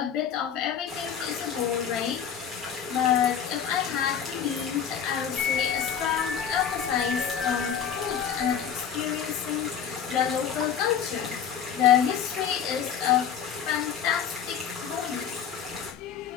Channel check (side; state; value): right; quieter; 8.2 dB